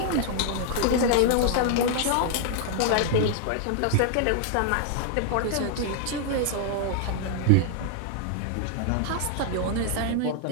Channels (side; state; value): both; different; correlation 0.00